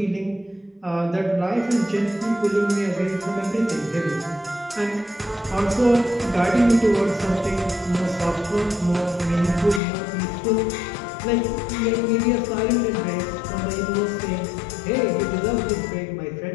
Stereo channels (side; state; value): right; drops out; at 9.8 s